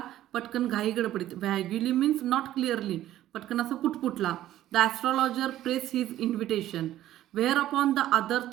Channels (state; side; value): quieter; left; 13.3 dB